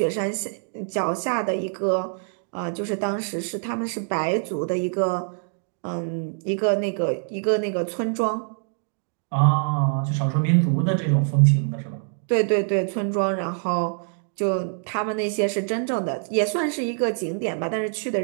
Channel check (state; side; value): silent; left; digital silence